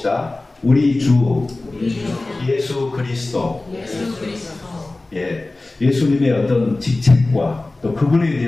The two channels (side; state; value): right; quieter; 3.0 dB